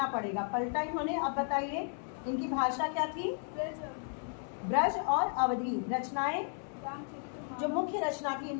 पड़ेगा। पलटा इन्होंने। अब बताइए इनकी भाषा क्या थी? ब्रज और अवधी। रचनाएं, जो मुख्य रचना थी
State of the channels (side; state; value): right; silent; 55 dB below the other